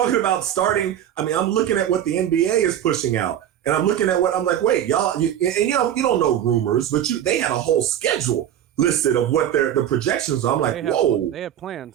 about starting. I mean, I'm looking at what the NBA is pushing out. And I'm looking at what I'm like, wait, y'all, you don't know rumors, but they had a whole schedule listed of what the projections are. I'm like, whoa. They have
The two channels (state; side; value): quieter; left; 10.6 dB